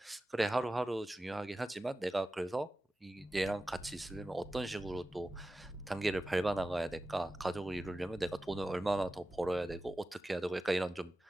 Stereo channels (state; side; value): normal; both; correlation 0.94